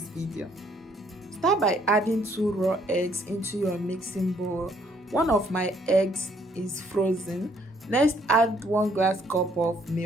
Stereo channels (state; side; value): normal; both; correlation 0.66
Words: video. Start by adding 2 raw eggs into your mixing bowl. One of my eggs is frozen. Next, add 1 glass cup of